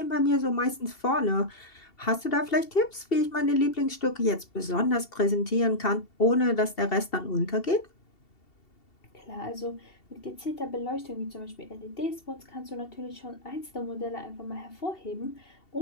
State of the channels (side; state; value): right; late; 2.7 ms